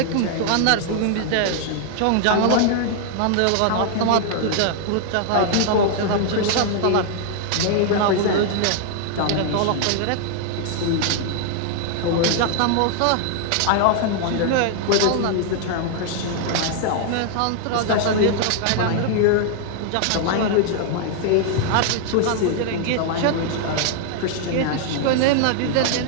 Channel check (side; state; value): both; different; correlation 0.00